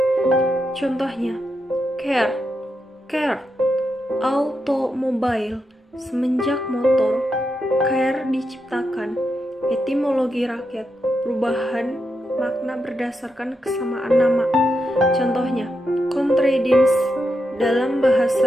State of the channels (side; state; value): both; normal; correlation 0.85